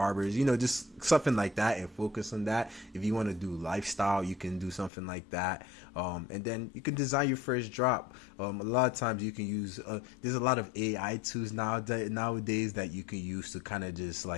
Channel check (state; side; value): drops out; right; at 4.9 s